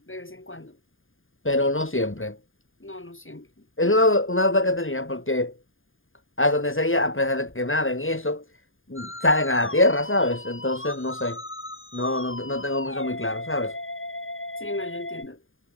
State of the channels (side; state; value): right; late; 0.59 ms